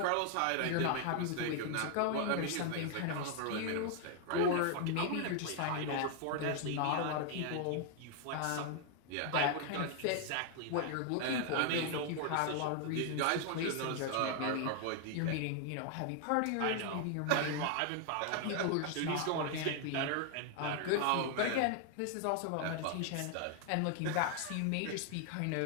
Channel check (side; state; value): both; different; correlation 0.00